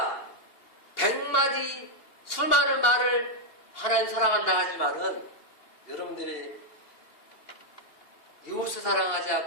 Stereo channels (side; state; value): right; late; 2.8 ms